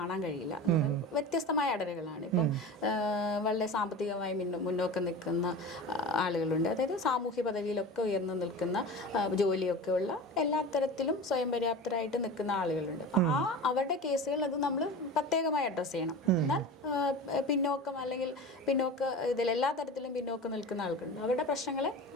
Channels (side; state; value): both; normal; correlation 0.32